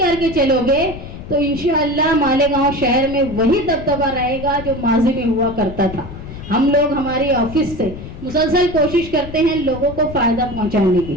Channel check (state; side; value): noise; left; rumble, 12 dB below the sound